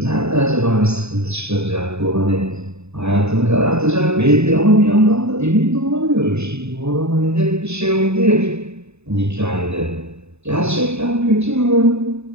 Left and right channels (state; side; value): late; left; 0.80 ms